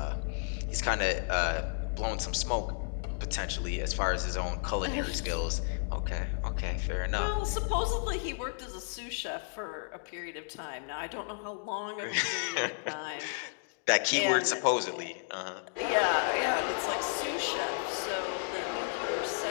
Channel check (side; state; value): right; silent; digital silence